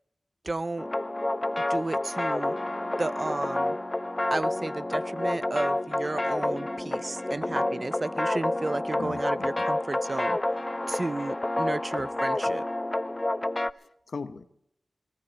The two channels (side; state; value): both; normal; correlation 0.98